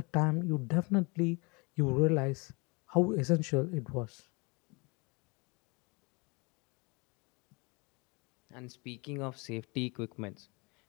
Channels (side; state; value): right; quieter; 29.0 dB